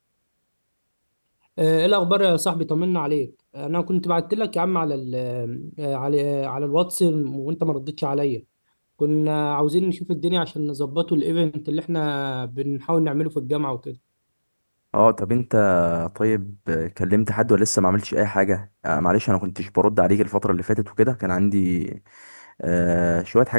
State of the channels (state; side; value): inverted; both; correlation -1.00